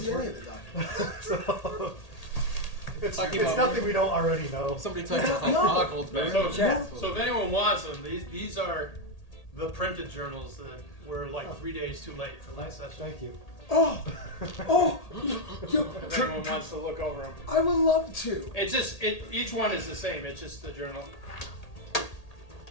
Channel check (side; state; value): right; late; 1.8 ms